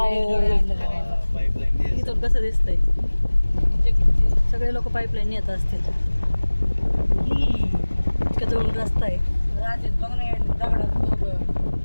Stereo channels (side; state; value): both; inverted; correlation -1.00